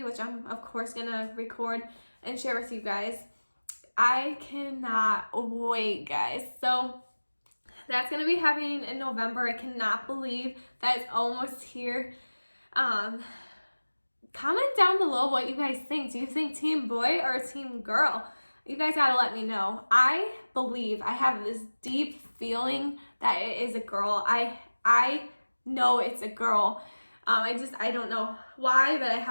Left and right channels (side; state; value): both; inverted; correlation -1.00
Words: which I'm of course going to record and share with you guys. I cannot wait, guys. So that's going to be happening in November. I cannot believe that it's almost here. Comment down below what you guys think. Do you think team boy or team girl? You guys gotta let me know. I believe, I have this deep feeling that it is a girl. I know it's a girl. I don't know why, but I